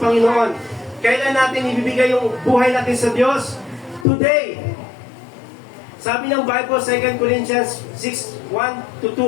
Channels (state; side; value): drops out; right; at 4.0 s